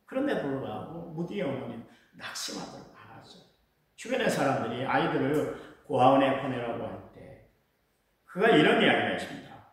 그런데 불구하고 무디의 어머니는 낙심하도록 않았어요. 주변의 사람들이 아이들을 고아원에 보내라고 할 때 그가 이런 이야기를 했습니다.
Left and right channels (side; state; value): both; identical; correlation 1.00